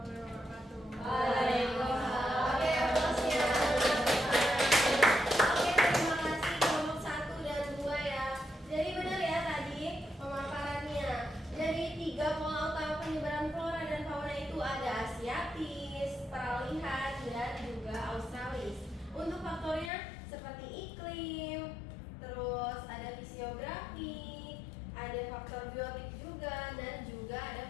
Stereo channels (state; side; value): drops out; right; at 19.9 s